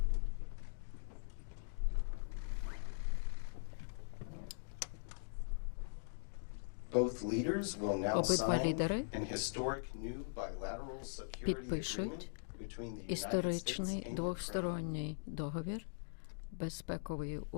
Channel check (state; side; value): silent; right; digital silence